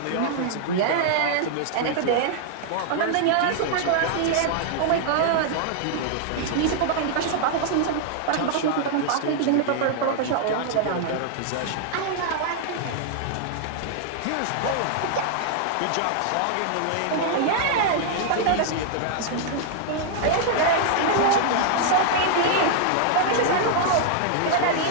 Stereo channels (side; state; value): both; different; correlation -0.01